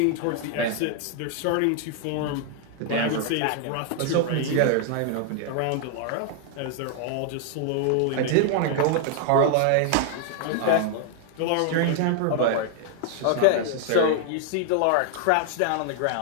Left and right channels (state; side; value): different; both; correlation 0.00